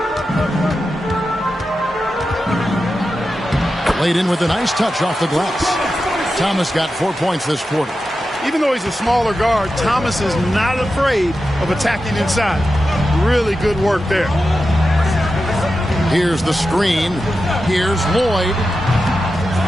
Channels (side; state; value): both; normal; correlation 0.91